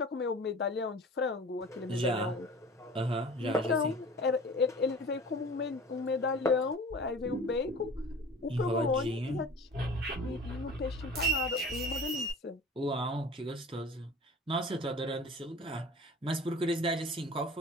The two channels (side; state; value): both; normal; correlation 0.41